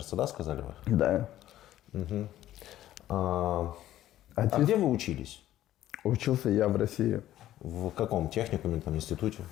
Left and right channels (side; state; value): right; quieter; 13.4 dB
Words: да, сказали вы? Да. А Отец где вы учились? учился я в России. В каком техникуме, там, институте?